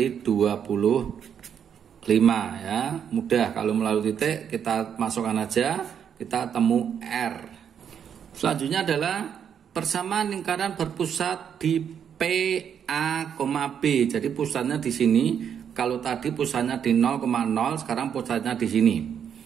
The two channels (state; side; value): quieter; left; 8.2 dB